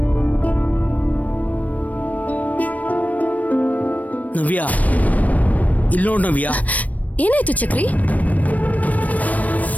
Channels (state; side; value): late; right; 0.072 ms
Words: ನವ್ಯ, ಇಲ್ಲಿ ನೋಡ್ ನವ್ಯ. ಏನಾಯ್ತು ಚಕ್ರಿ?